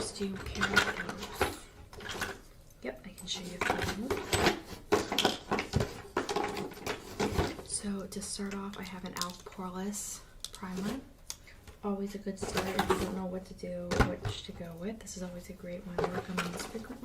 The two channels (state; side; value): identical; both; correlation 1.00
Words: Do you care about those? Yep, I can show you those. So to start off, I have an e.l.f. Poreless primer. Always a good start if you don't know what to do, which to go with. This is always a great one to recommend